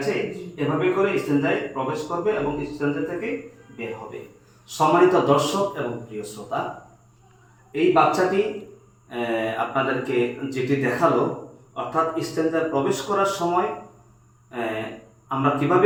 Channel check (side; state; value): both; identical; correlation 1.00